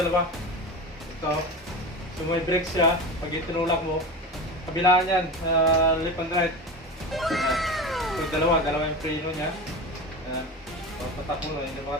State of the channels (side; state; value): both; normal; correlation 0.27